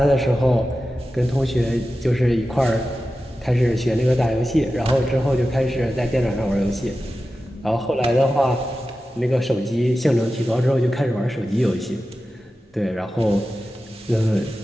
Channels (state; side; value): normal; both; correlation 0.93